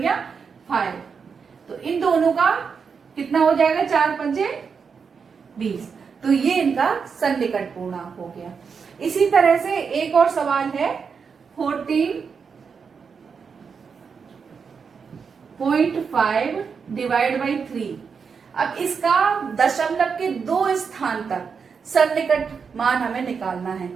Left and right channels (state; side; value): quieter; left; 5.9 dB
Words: 5। तो इन दोनों का कितना हो जाएगा, 4 पंजे 20। तो ये इनका सन्निकट पूर्णांक हो गया। इसी तरह से एक और सवाल है 14.5 डिवाइड बाई 3। अब इसका दशमलव के 2 स्थान तक सन्निकट मान हमें निकालना है।